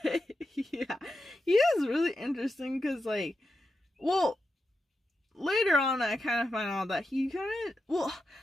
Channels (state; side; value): normal; both; correlation 0.88